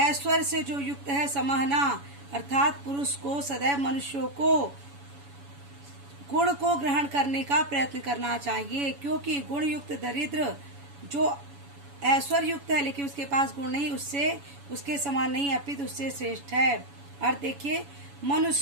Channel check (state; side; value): late; left; 7.1 ms